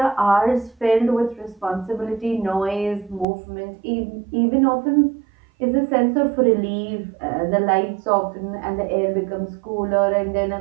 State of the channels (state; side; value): drops out; left; at 3.2 s